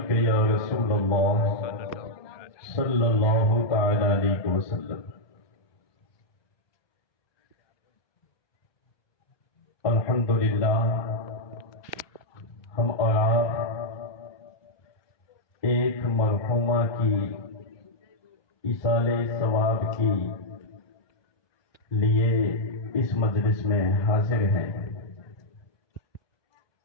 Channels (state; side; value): late; right; 1.2 ms